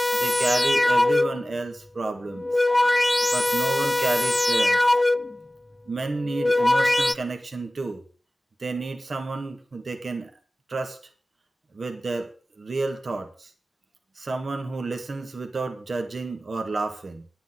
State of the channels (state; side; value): normal; both; correlation 0.97